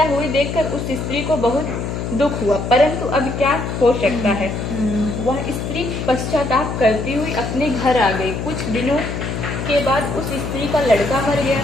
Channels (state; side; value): noise; left; hum, 4 dB below the sound